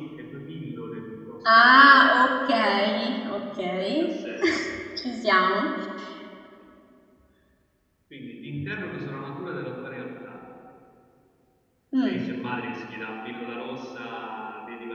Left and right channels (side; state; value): both; identical; correlation 1.00